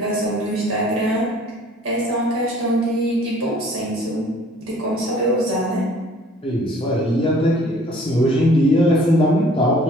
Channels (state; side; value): normal; both; correlation 0.54